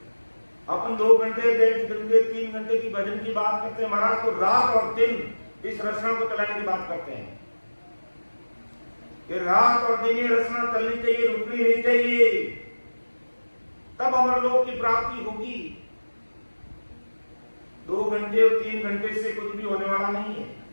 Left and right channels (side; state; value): both; inverted; correlation -1.00